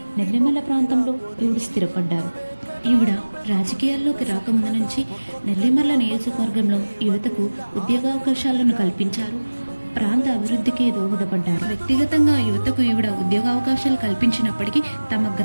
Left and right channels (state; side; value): inverted; both; correlation -1.00